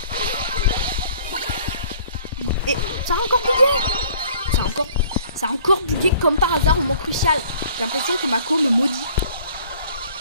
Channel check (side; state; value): both; inverted; correlation -0.55